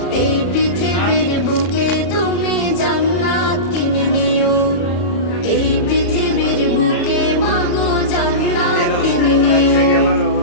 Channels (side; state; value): right; late; 34 ms